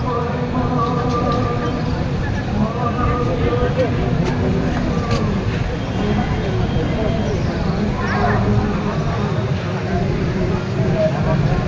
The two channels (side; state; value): both; identical; correlation 1.00